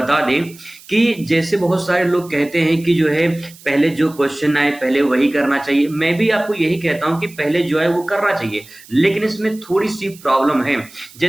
दें कि जैसे बहुत सारे लोग कहते हैं कि जो है पहले जो क्वेश्चन आए पहले वही करना चाहिए। मैं भी आपको यही कहता हूं कि पहले जो है वो करना चाहिए, लेकिन इसमें थोड़ी सी प्रॉब्लम है।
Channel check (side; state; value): right; noise; hiss, 22 dB below the sound